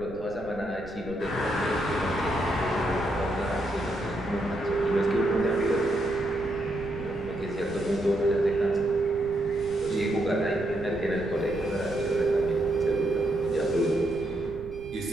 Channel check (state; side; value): noise; right; rumble, 16 dB below the sound